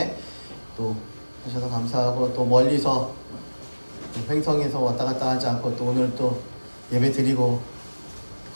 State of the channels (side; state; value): both; inverted; correlation -1.00